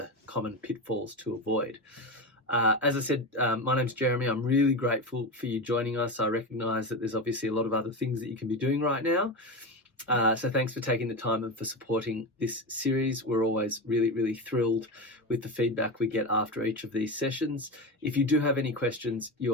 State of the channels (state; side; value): normal; both; correlation 0.20